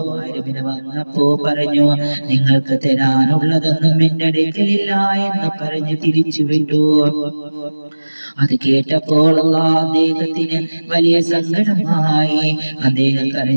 പറഞ്ഞു, നിങ്ങൾക്ക് തരാനുള്ളതൊന്നും എന്റെ അടുക്കലില്ല എന്ന് പറഞ്ഞ് തിരിച്ചു വിട്ടു. അത് കേട്ടപ്പോൾ അദ്ദേഹത്തിന് വലിയ സങ്കടമായി. അദ്ദേഹം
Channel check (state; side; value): inverted; both; correlation -1.00